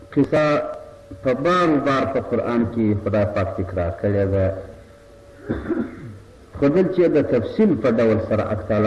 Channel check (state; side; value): identical; both; correlation 1.00